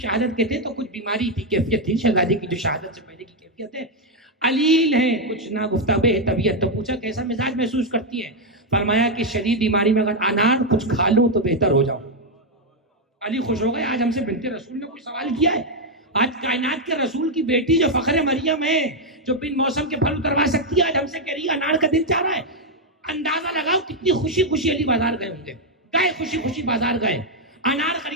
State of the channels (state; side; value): normal; both; correlation 0.01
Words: کے تھے تو کچھ بیماری تھی، کیفیت تھی شہزادی کی جو شہادت سے پہلے کی کیفیت ہے، علیل ہے، کچھ نا گفتگو ہے طبیعت. تو پوچھا کیسا مزاج محسوس کرتی ہے؟ فرمایا کہ شدید بیماری میں اگر انار کچھ کھا لوں تو بہتر ہو جاؤں. علی خوش ہو گئے. آج ہم سے بنت رسول نے کوئی سوال کیا ہے؟ آج کائنات کے رسول کی بیٹی جو فخر مریم ہے، جو بن موسم کے پھل اتروا سکتی ہے، آج ہم سے کہہ رہی ہے انار کا دل چاہ رہا ہے. اندازہ لگاؤ کتنی خوشی خوشی علی بازار گئے ہوں گے. گئے خوشی خوشی بازار گئے، انار